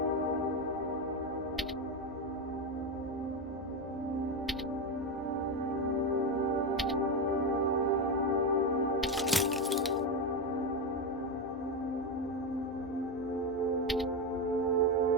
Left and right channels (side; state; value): both; normal; correlation 0.12